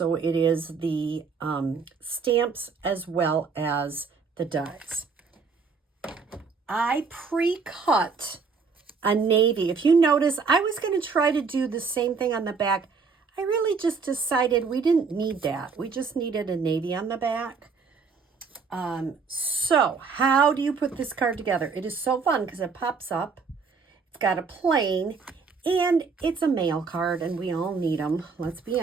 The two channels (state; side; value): quieter; left; 5.1 dB